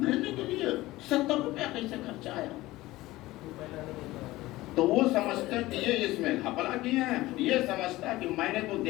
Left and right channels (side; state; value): right; quieter; 18.0 dB